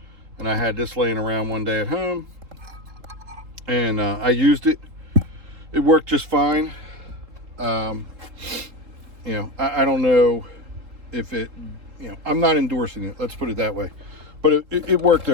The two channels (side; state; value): left; late; 3.7 ms